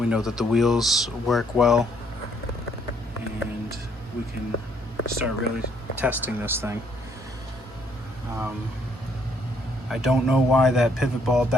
know that the wheels work well, and we can start really testing this thing. I don't know why that pivot ball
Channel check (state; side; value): normal; both; correlation 0.67